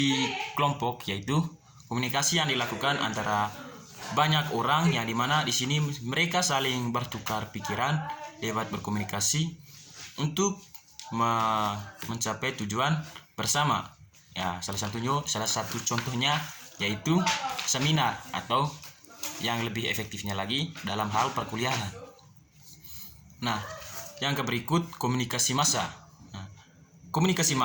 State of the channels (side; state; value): both; identical; correlation 1.00